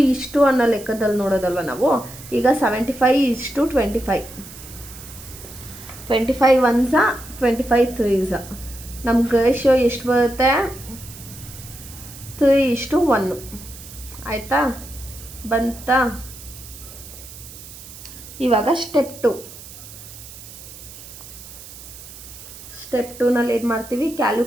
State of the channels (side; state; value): right; noise; hiss, 16 dB below the sound